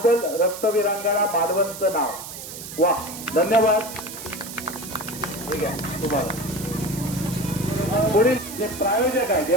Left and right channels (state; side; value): noise; right; hiss, 11 dB below the sound